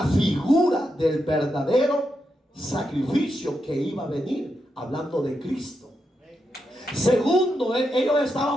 figura del verdadero sacrificio que iba a venir, hablando de Cristo. Segundo, ellos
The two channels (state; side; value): normal; both; correlation 0.85